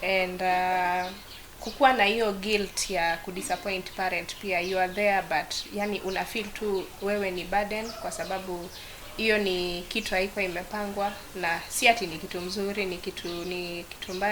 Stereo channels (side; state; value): both; identical; correlation 1.00